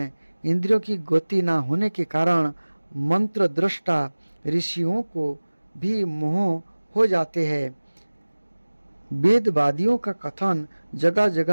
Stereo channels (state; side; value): inverted; both; correlation -1.00